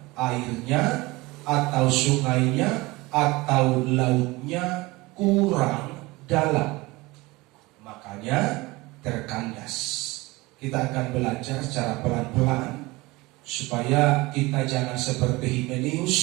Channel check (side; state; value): left; quieter; 22.0 dB